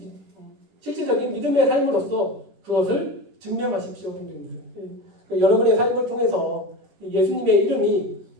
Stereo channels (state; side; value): late; left; 10 ms